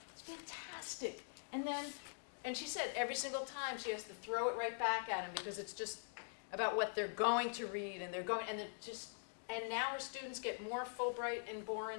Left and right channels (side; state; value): right; silent; digital silence